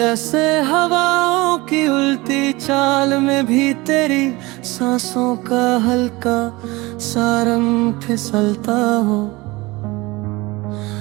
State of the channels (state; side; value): quieter; left; 22.1 dB